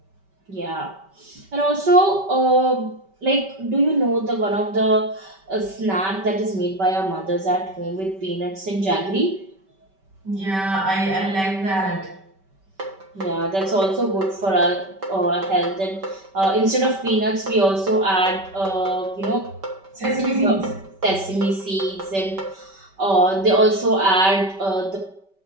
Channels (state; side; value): late; left; 5.2 ms